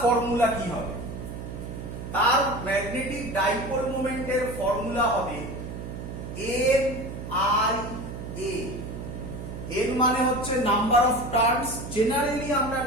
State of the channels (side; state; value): right; noise; hum, 8 dB below the sound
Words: ফর্মুলা কি হবে তার ম্যাগনেটিক ডাইপোল মোমেন্টের ফর্মুলা হবে n i a n মানে হচ্ছে নাম্বার অফ টার্নস জেনারেলি আমরা